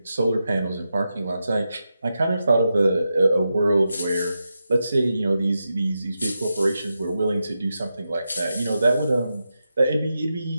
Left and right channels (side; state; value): both; inverted; correlation -0.88